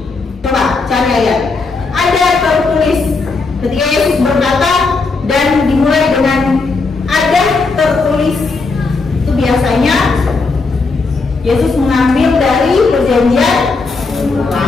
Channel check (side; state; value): right; quieter; 4.0 dB